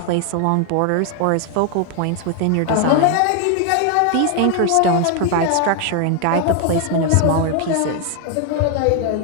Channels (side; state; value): both; different; correlation 0.00